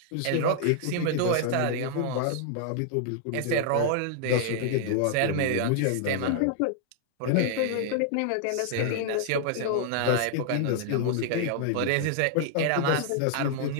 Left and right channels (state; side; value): different; both; correlation -0.01